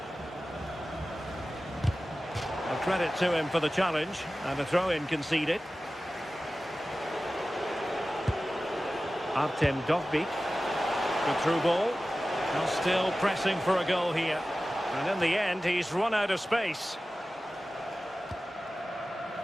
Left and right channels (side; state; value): both; normal; correlation 0.95